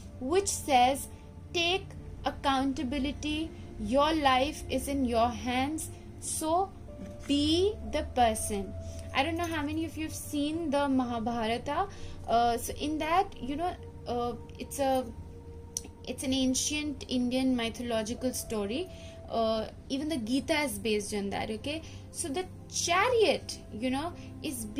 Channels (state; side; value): identical; both; correlation 1.00